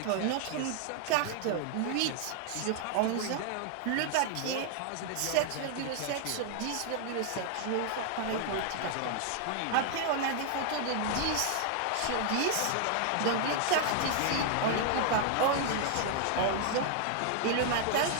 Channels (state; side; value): different; both; correlation 0.00